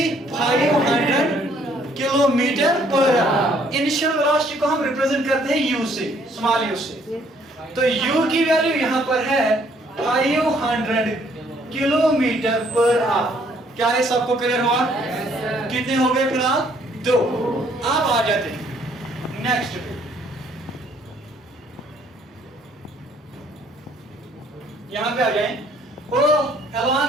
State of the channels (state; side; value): normal; both; correlation 0.64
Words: 500 kilometre per hour. Initial velocity को हम रिप्रेजेंट करते हैं u से, स्मॉल u से। तो u की वैल्यू यहां पर है 500 किलोमीटर पर आवर। क्या है, सबको क्लियर हुआ? कितने हो गए फिलहाल? 2। आप आ जाते हैं नेक्स्ट पे। यहां पे आ जाए, वो